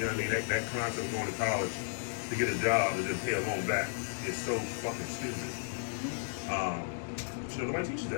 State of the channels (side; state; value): right; silent; digital silence